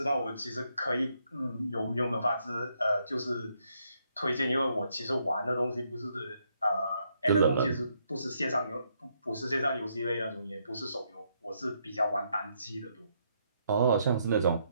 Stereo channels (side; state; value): both; inverted; correlation -0.75